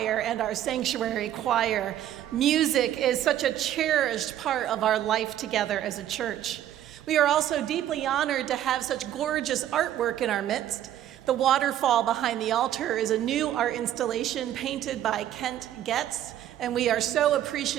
and our Sanctuary Choir. Music is such a cherished part of our life together as a church. We are also deeply honored to have such gorgeous artwork in our midst. The waterfall behind the altar is a new art installation painted by Kent Getz, and we are so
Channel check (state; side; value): quieter; left; 11.7 dB